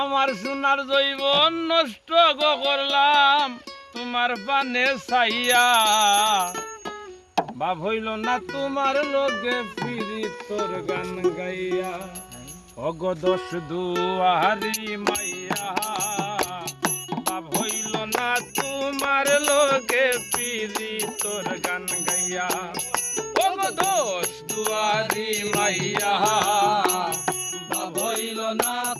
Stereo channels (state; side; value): identical; both; correlation 1.00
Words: আমার সোনার জৈবন নষ্ট করলাম তোমার পানে চাইয়া। ভাব হইল না তোমার লগে ফিরি তোর গান গাইয়া। অগ দশ দুয়ারি মাইয়া ভাব হইল না তোমার লগে ফিরি তোর গান গাইয়া। অগ দশ দুয়ারি মাইয়া ভাব হইল না